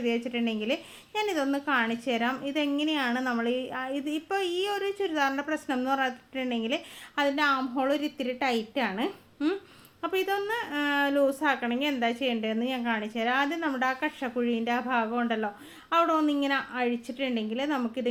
വെച്ചിട്ടുണ്ടെങ്കിൽ ഞാനിതൊന്ന് കാണിച്ചു തരാം. ഇതെങ്ങനെയാണ് നമ്മൾ ഇപ്പോൾ ഈ ഒരു ചുരിദാറിൻ്റെ പ്രശ്നം എന്ന് പറഞ്ഞിട്ടുണ്ടെങ്കിൽ അതിൻ്റെ ആം ഹോൾ ഒരു ഇത്തിരി ടൈറ്റാണ്. അപ്പോൾ ഇതൊന്ന് ലൂസാക്കണമെങ്കിൽ എന്താ ചെയ്യേണ്ടതെന്ന് ഞാൻ കാണിച്ചു തരാം. ആദ്യം നമ്മുടെ ആ കക്ഷക്കുഴീൻ്റെ ആ ഭാഗം ഉണ്ടല്ലോ, അവിടെ ഒന്നിങ്ങനെ അഴിച്ചിട്ടുണ്ടെങ്കിൽ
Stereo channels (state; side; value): identical; both; correlation 1.00